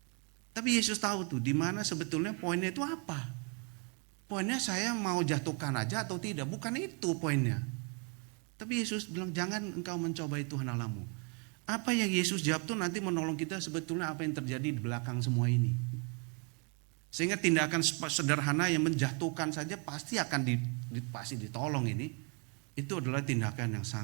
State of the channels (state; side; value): quieter; left; 34.5 dB